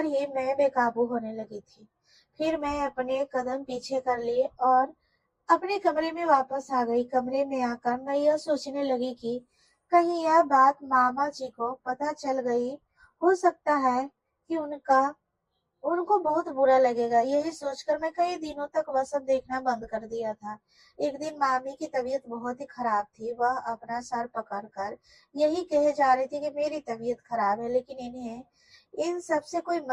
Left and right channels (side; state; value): both; identical; correlation 1.00